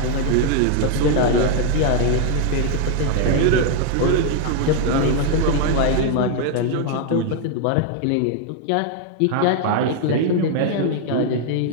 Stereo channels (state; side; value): different; both; correlation 0.00